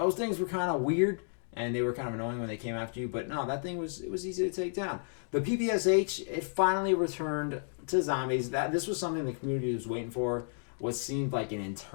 kind of weird, and they were kind of annoying when they came after you, but no, that thing was easy to take down. The PPSH, it finally returned to Zombies. This was something the community was waiting for, what seemed like an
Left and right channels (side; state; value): right; silent; digital silence